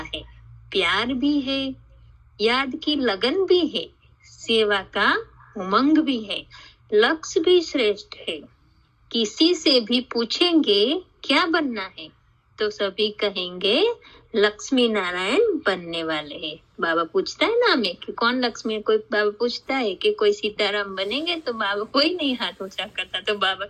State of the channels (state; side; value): identical; both; correlation 1.00